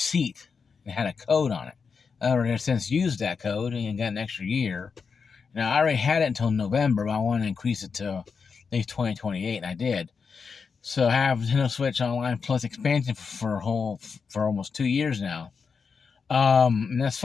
that had a code on it. I already since used that code and got an extra year. Now, I already had it until November, but I want to increase it to at least 2028, and I did. So I have Nintendo Switch Online Plus expansion for almost 2 years now. And that's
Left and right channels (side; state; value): right; quieter; 5.5 dB